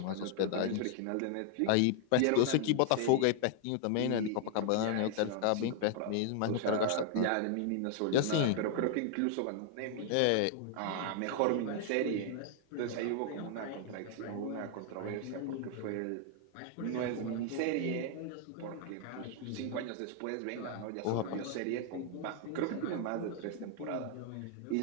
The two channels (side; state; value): both; different; correlation 0.00